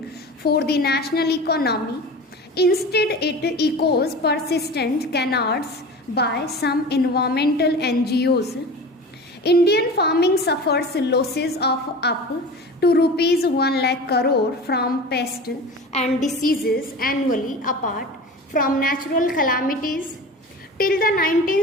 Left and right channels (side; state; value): both; normal; correlation 0.34